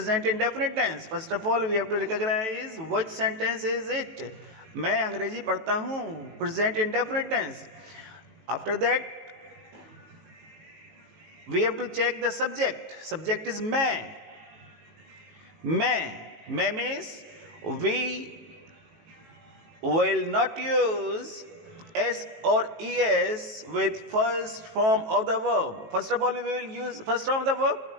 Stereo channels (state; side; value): late; left; 19 ms